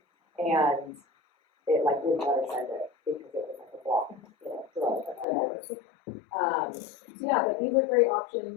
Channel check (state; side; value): drops out; right; at 5.2 s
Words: and it like wouldn't let her send it because it was like a block, drug or whatever. So yeah, but these are great